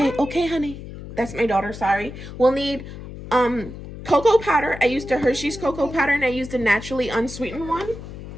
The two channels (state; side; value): noise; left; hum, 12 dB below the sound